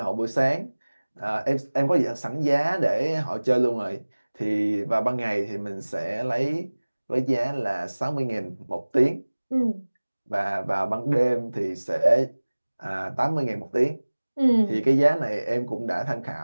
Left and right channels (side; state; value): both; inverted; correlation -1.00